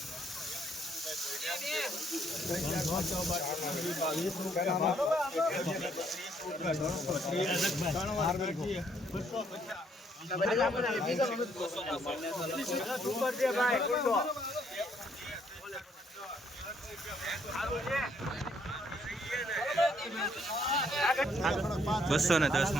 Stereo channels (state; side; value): normal; both; correlation 0.68